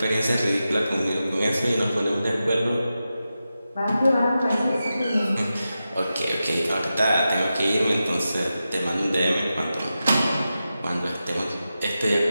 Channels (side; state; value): both; inverted; correlation -0.91